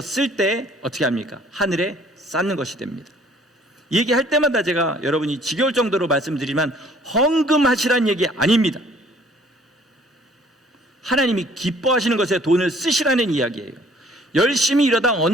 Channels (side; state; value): both; normal; correlation 0.57